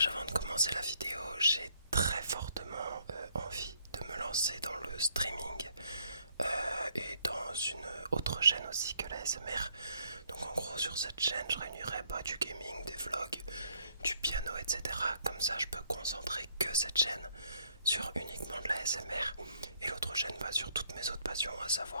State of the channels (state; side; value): inverted; both; correlation -0.69